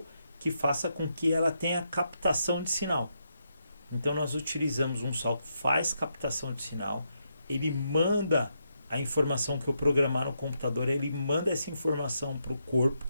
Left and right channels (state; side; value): inverted; both; correlation -0.81